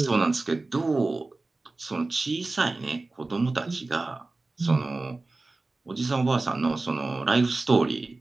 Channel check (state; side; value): quieter; left; 3.3 dB